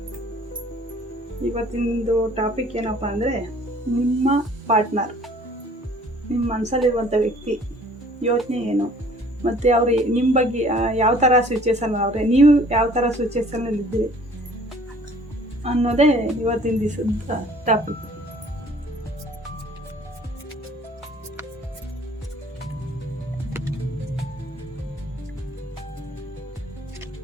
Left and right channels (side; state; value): both; normal; correlation 0.54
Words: ಇವತ್ತಿಂದು ಟಾಪಿಕ್ ಏನಪ್ಪ ಅಂದರೆ, ನಿಮ್ಮ ಪಾರ್ಟ್ನರ್, ನಿಮ್ಮ ಮನಸ್ಸಲ್ಲಿರುವಂಥ ವ್ಯಕ್ತಿ ಯೋಚನೆ ಏನು, ಮತ್ತು ಅವರು ನಿಮ್ಮ ಬಗ್ಗೆ ಯಾವ ಥರ ಸಿಚುವೇಶನ್ ಅವರೇ, ನೀವು ಯಾವ ಥರ ಸಿಚುವೇಶನಲ್ಲಿದ್ದೀರಿ ಅನ್ನೋದೇ ಇವತ್ತಿನ ದಿವಸದ ಟಾಪಿಕ್.